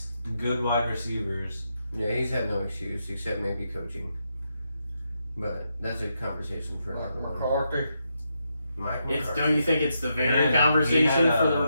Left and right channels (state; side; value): inverted; both; correlation -0.82